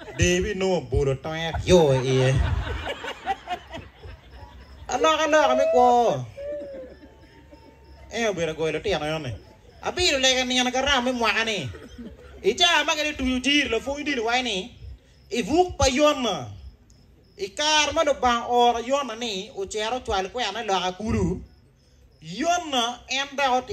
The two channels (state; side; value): identical; both; correlation 1.00